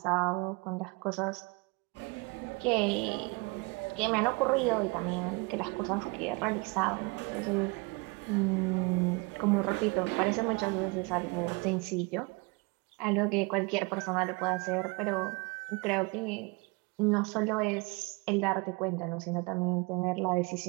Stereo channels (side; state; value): left; quieter; 28.3 dB